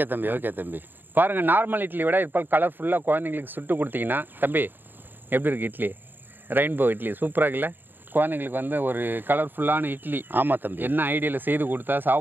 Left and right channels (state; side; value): late; left; 0.093 ms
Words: தம்பி, ஓகே தம்பி. பாருங்கள், நார்மல் இட்லி விட இப்போ கலர்ஃபுல்லாக குழந்தைங்களுக்கு சுட்டு கொடுத்தீங்கன்னா தம்பி எப்படி இருக்குது இட்லி? ரெயின்போ இட்லி சூப்பராக இருக்குல்ல? குழந்தைங்களுக்கு வந்து ஒரு கலர்ஃபுல்லான இட்லி. ஆமாம் தம்பி. என்ன ஐடியாவில் செய்து கொடுத்தா